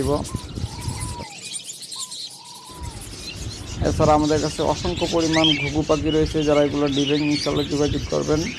এছাড়া আমাদের কাছে অসংখ্য পরিমাণ ঘুঘু পাখি রয়েছে, যারা এগুলো দিবেন ইনশাল্লাহ যোগাযোগ করবেন।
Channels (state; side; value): identical; both; correlation 1.00